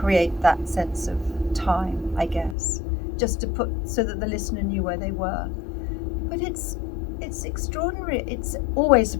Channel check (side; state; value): right; drops out; at 2.6 s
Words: that sense of time, I guess, just to put so that the listener knew where they were. But it's extraordinary. It always